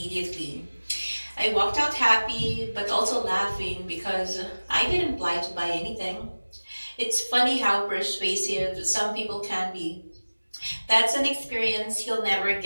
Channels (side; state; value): both; inverted; correlation -1.00